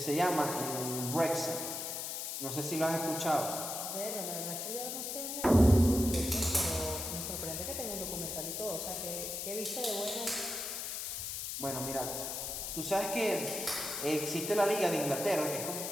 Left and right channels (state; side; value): noise; left; hiss, 4 dB below the sound